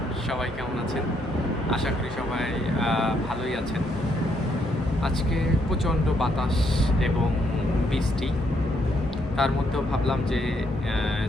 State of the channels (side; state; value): both; normal; correlation 0.73